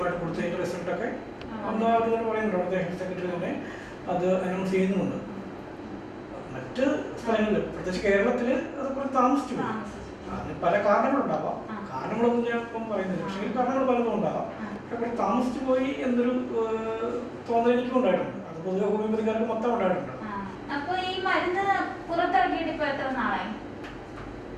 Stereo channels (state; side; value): identical; both; correlation 1.00